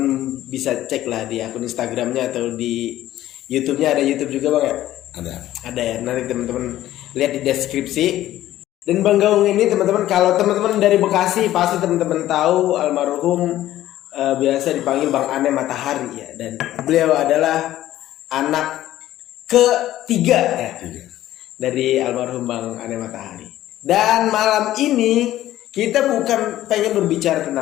bisa cek lah di akun Instagramnya atau di YouTube-nya. Ada YouTube juga, Bang, ya? Ada ya. Nanti teman-teman lihat di deskripsi. Dan Bang Gaung ini, teman-teman, kalau teman-teman dari Bekasi pasti teman-teman tahu almarhum biasa dipanggil Bang Ane Matahari ya. Dan beliau adalah anak ketiga ya, dari almarhum Bang Ane Matahari. Dan malam ini kita bukan pengen berbicara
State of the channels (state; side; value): quieter; right; 13.9 dB